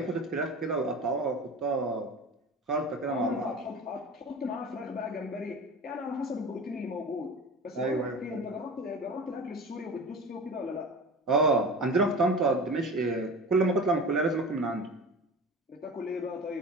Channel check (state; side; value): normal; both; correlation 0.34